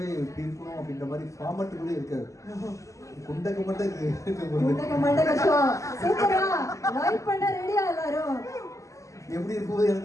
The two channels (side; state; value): right; late; 0.16 ms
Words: இப்படி இருக்கணும் அப்படின்ற மாதிரி ஃபார்மட் கூட இருக்காது. குண்டக்க மட்டும் ஷோ சூப்பரா லைவ் பண்ண ரெடியா எல்லாரும்? எப்படி இருக்கும்போது